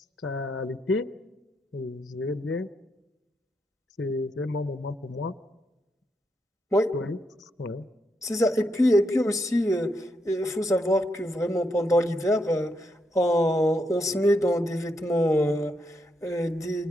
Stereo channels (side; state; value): both; normal; correlation 0.80